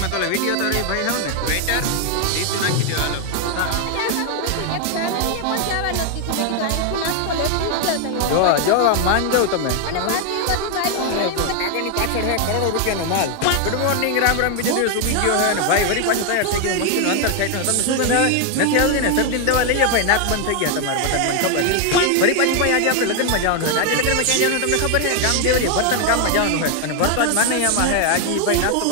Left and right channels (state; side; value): different; both; correlation 0.00